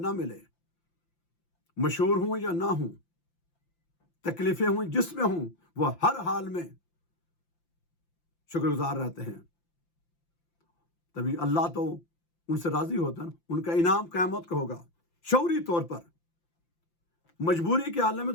ملے، مشہور ہوں یا نہ ہوں، تکلیفیں ہوں جس میں ہوں، وہ ہر حال میں شکر گزار رہتے ہیں۔ تبھی اللہ تو ان سے راضی ہوتا ہے نا، ان کا انعام قیامت کا ہوگا شعوری طور پر۔ مجبوری کے عالم میں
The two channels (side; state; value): right; late; 5.8 ms